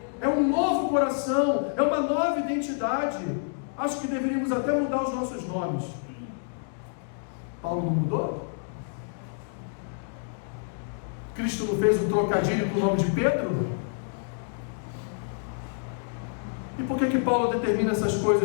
É um novo coração, é uma nova identidade. Acho que deveríamos até mudar os nossos nomes. Paulo não mudou? Cristo não fez um trocadilho com o nome de Pedro? E por que Paulo determina essas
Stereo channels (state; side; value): silent; right; digital silence